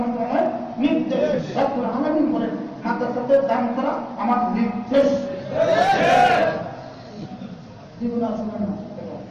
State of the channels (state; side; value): identical; both; correlation 1.00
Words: নির্দেশ। রব্বুল আলামিন বলেন মাদ্রাসাদের দান করা আমার নির্দেশ। জীবন আসলে না